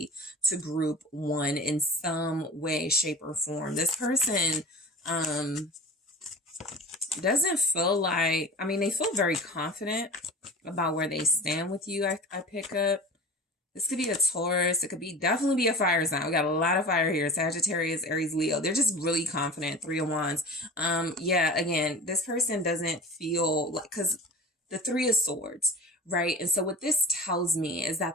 to group one in some way, shape, or form. This person doesn't feel like, I mean, they feel very confident about where they stand with you. I pick up. This could be a Taurus. It could be definitely be a fire sign. We got a lot of fire here. Sagittarius, Aries, Leo. They're just really confident. Three of Wands. Yeah, again, this person doesn't feel like, because the Three of Swords, right? And so what this tells me is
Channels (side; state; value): both; normal; correlation 0.36